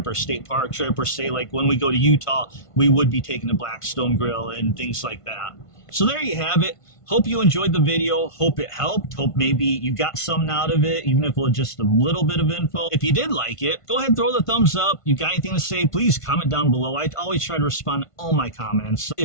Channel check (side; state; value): right; late; 1.5 ms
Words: or state park trip, or say like when we go to Utah, we would be taking the Blackstone grill and things like that. So there you have it. Hope you enjoyed the video. Hope it helped. Hope maybe you got something out of it, even if it was just a little bit of info. If you did like it, go ahead and throw the thumbs up. You got anything to say, please comment down below. I always try to respond to all my comments.